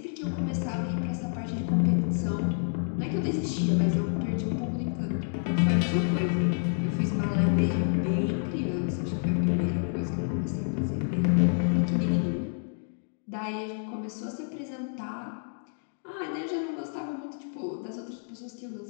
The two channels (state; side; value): silent; right; digital silence